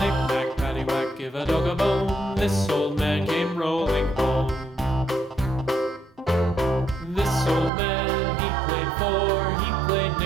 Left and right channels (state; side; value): drops out; left; at 7.7 s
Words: knick-knack, paddywhack, give a dog a bone. This old man came rolling home. This old man, he played four. He played